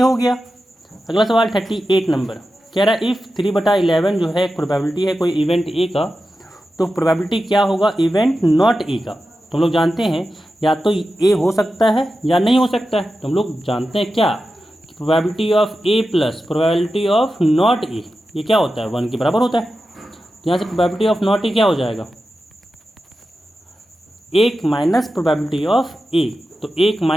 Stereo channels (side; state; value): both; normal; correlation 0.92